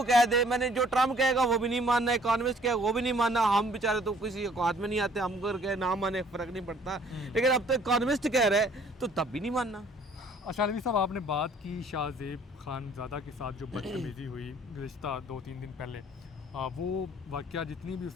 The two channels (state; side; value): normal; both; correlation 0.58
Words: कह दे, मैंने जो ट्रम्प कहेगा वो भी नहीं मानना, इकॉनमिस्ट कहेगा वो भी नहीं मानना, हम बेचारे तो किसी औकात में नहीं आते, हम अगर कहे ना माने फ़र्क नहीं पड़ता, लेकिन अब तो इकॉनमिस्ट कह रहे हैं तो तब भी नहीं मानना। अच्छा अलवी साहब, आपने बात की शाहज़ेब खानज़ादा के साथ जो बदतमीज़ी हुई गुज़िश्ता 2-3 दिन पहले, वो वाक़या जितनी भी